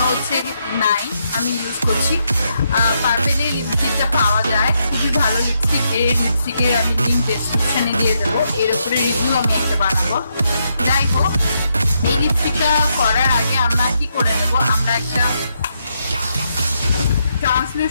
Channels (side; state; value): both; inverted; correlation -0.79